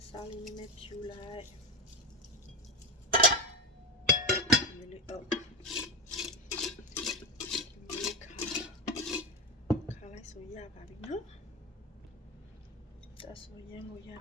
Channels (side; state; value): both; normal; correlation 0.14